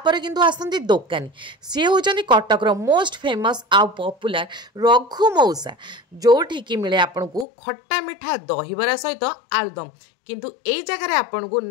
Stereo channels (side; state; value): right; drops out; at 7.5 s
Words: किंतु आसती दोकानी सी होचंदी कटक रो मोस्ट फेमस आ पॉपुलर रघु मौसा जोठी की मिले आपको खट्टा मिठा दहीबरा सहित आलुदम किंतु एई जगह आपन को